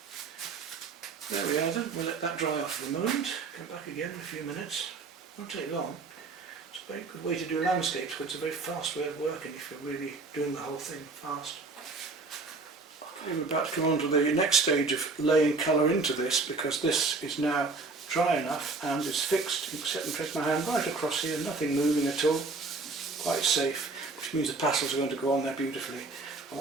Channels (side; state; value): left; quieter; 3.8 dB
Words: There we are then, we'll let that dry off for a moment. Come back again in a few minutes. Won't take long. It's a very good way to do landscapes, because it's a very fast way of working if you're really doing the whole thing fast. Okay, we're about to come on to the next stage of laying colour into this, because this is now dry enough and it's fixed. You can set and trace my hand right across here, nothing moving at all, quite safe, which means the pastels are going to go on there beautifully. I